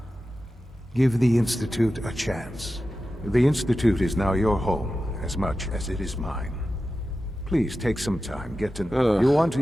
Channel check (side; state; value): both; normal; correlation 0.92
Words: Give the Institute a chance. The Institute is now your home as much as it is mine. Please take some time, get to know. You want to